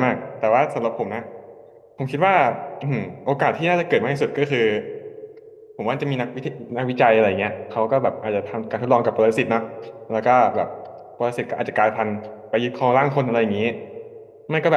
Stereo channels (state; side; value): identical; both; correlation 1.00